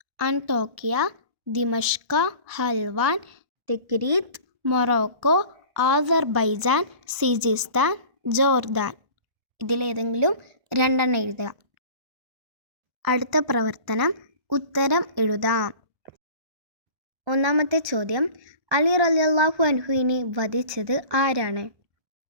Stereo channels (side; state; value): left; late; 1.0 ms